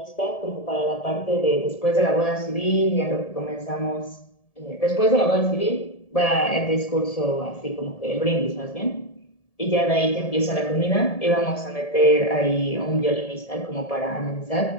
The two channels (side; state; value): right; late; 1.7 ms